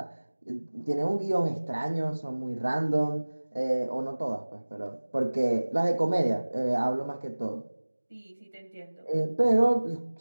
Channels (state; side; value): inverted; both; correlation -1.00